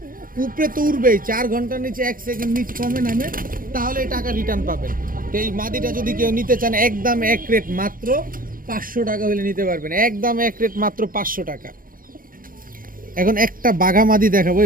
উপরে তো উড়বেই, 4 ঘন্টার নিচে 1 সেকেন্ড নিচে কমে নামে, তাহলে এই টাকা রিটার্ন পাবেন। তো এই মাদিটা যদি কেউ নিতে চান, একদম এক রেট মাত্র 500 টাকা হলে নিতে পারবেন, একদম এক রেট মাত্র 500 টাকা। এখন একটা বাঘামাদি দেখাবো।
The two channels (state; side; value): late; left; 0.41 ms